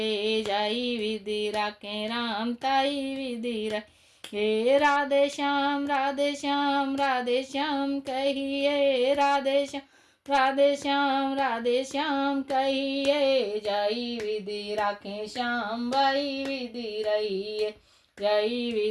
जय विधि राखे राम ताई विधि रहिए। राधे श्याम राधे श्याम राधे श्याम कहिए, राधे श्याम राधे श्याम राधे श्याम कहिए, जय विधि राखे श्याम वही विधि रहिए, जय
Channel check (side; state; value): both; identical; correlation 1.00